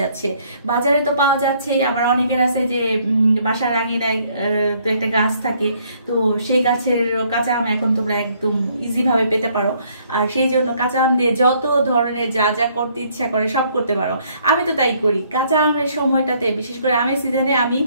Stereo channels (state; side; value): inverted; both; correlation -0.65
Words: বাজারে তো পাওয়া যাচ্ছে। আবার অনেকের আছে যে বাসার আঙিনায় তো একটা গাছ থাকে, তো সেই গাছের কাঁচা আম এখন তোমরা একদম ইজি ভাবে পেতে পারো। আর সেই জন্য কাঁচা আম দিয়ে যত ধরনের যা যা করতে ইচ্ছা করে সব করতে পারো। আমি তো তাই করি। কাঁচা আমের সময়টাতে, বিশেষ করে আমের সিজনে, আমি